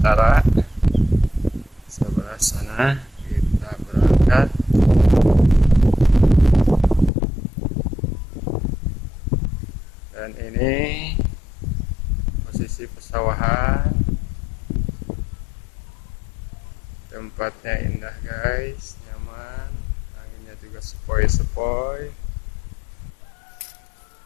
sebelah sana. Kita berangkat. Dan ini posisi pesawahan. Tempatnya indah, guys, nyaman, anginnya juga sepoi-sepoi.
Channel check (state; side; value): drops out; right; at 7.1 s